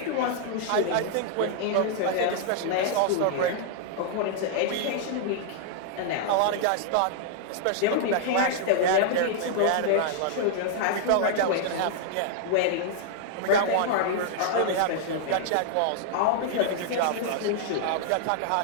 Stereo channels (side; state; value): both; different; correlation -0.01